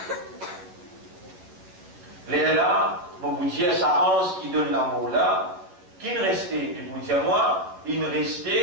Les là, on vous dire ça ange qui donne la mort là. Qui ne restait, et vous dire moi, il ne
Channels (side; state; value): left; late; 10 ms